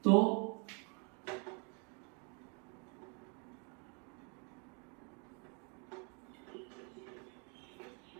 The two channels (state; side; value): quieter; left; 36.5 dB